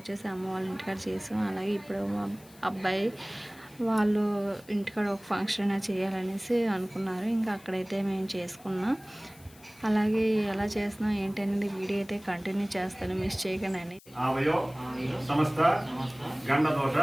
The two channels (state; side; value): noise; left; hiss, 24 dB below the sound